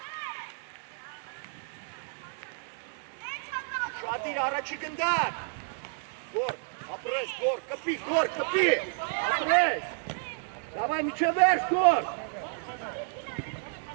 Şadir araçı gönder. Gor, kapı. Apres. Давай, мячевер, скор.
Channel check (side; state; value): left; silent; digital silence